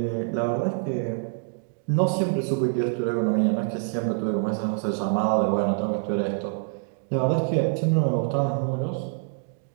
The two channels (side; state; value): left; silent; 61 dB below the other